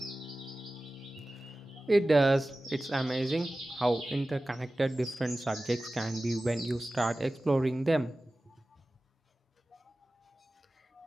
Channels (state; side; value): normal; both; correlation 0.96